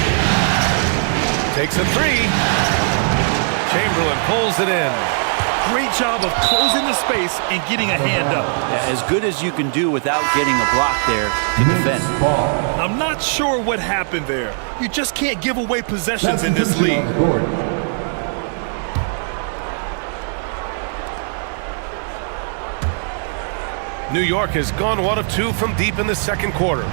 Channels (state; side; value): silent; left; digital silence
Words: Takes a 3. Chamberlain pulls it in. Great job of closing the space and getting a hand up. Yeah, as good as you can do without getting a block there to defend. Knicks ball. I'm not sure what happened there. You just can't give away possessions in this Substitution league. on the court. New York has gone 1 of 2 from deep in the second quarter.